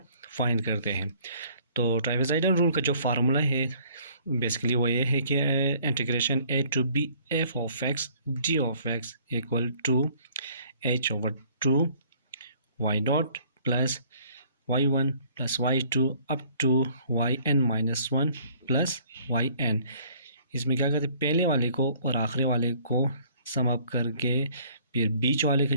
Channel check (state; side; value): inverted; both; correlation -0.58